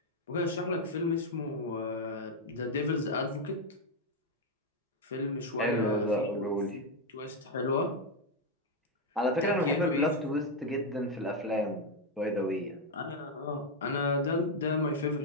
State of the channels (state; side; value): normal; both; correlation 0.04